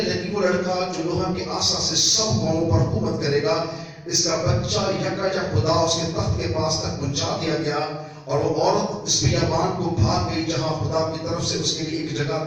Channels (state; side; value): identical; both; correlation 1.00